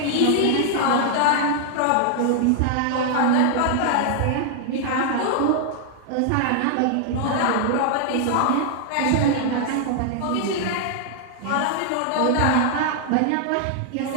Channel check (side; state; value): both; different; correlation 0.00